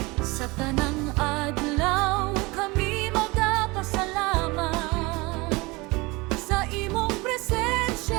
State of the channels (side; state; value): left; quieter; 24.1 dB